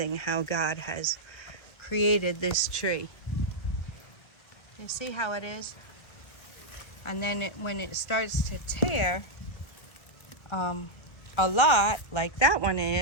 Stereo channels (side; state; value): right; late; 1.6 ms